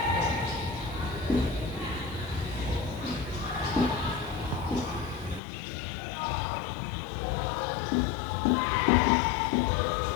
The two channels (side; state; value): right; drops out; at 5.4 s